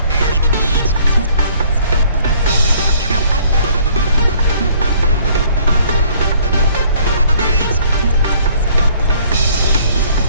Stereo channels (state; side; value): inverted; both; correlation -0.58